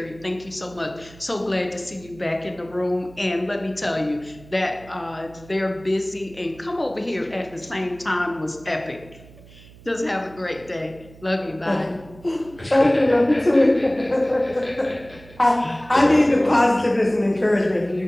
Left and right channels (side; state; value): right; noise; hum, 22 dB below the sound